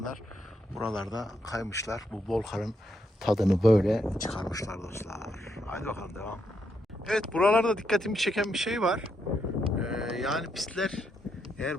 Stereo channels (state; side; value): normal; both; correlation 0.79